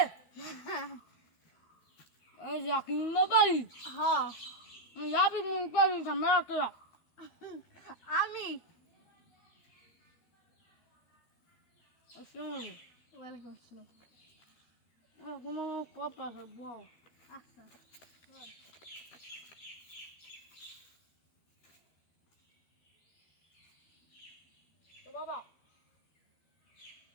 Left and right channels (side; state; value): right; late; 13 ms